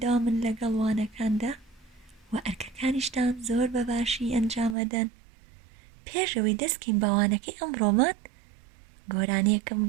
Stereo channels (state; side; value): drops out; left; at 4.8 s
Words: لەگەڵ وانەکاندا و ئەرکەکانیشتان زۆر بەباشی ئەنجامەدەن. پێشەوەی دەستکەین بە وانەکەی ئەمڕۆمان گۆرانیەکەم